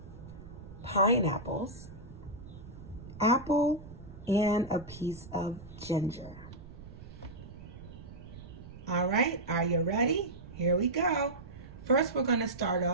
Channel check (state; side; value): noise; right; rumble, 15 dB below the sound